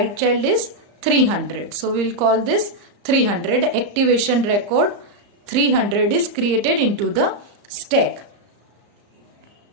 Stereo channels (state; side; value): late; left; 34 ms